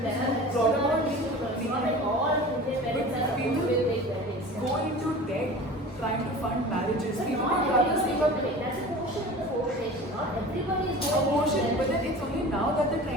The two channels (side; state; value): both; normal; correlation 0.38